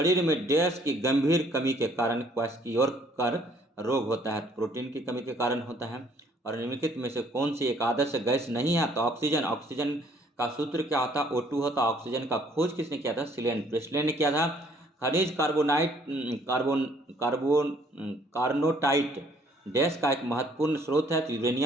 में डैश की गंभीर कमी के कारण क्वाशकियोकर रोग होता है? प्रोटीन की कमी के कारण होता है। और निम्नलिखित में से कौन सी एक आदर्श गैस नहीं है? तो ऑक्सीजन। ऑक्सीजन का सूत्र क्या होता है? O2 होता। ऑक्सीजन का खोज किसने किया था? प्रेसले ने किया था। खनिज कार्नोटाइट डैश का एक महत्वपूर्ण स्रोत है, तो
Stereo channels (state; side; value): normal; both; correlation 0.62